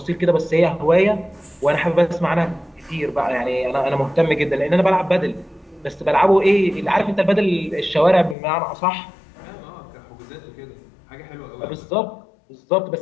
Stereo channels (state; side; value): drops out; right; at 8.3 s